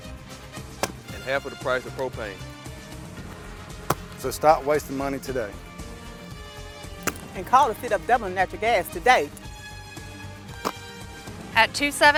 And half of the price of propane. So stop wasting money today. And call the City of Dublin Natural Gas today. At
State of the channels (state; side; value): identical; both; correlation 1.00